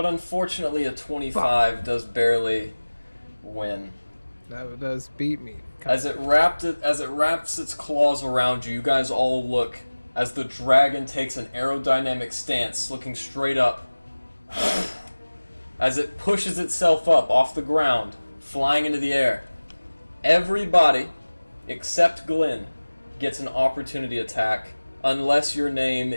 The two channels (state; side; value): inverted; both; correlation -1.00